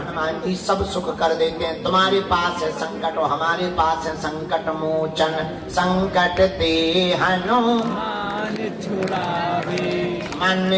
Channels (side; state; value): both; identical; correlation 1.00